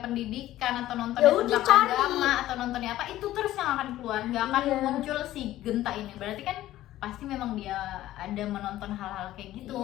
atau Ya nontonnya udah, tentang cari. agama atau nontonnya apa, itu terus yang akan keluar, nggak akan Iya. muncul si Genta ini. Berarti kan pasti memang dia ada menonton hal-hal kayak gitu.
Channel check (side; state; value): right; quieter; 14.5 dB